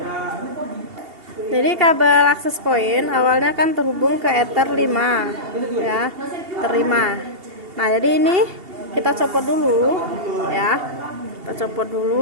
Jadi kabel access point awalnya kan terhubung ke Ether 5 ya, terima. Nah, jadi ini kita copot dulu ya. Kita copot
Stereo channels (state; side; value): late; left; 2.8 ms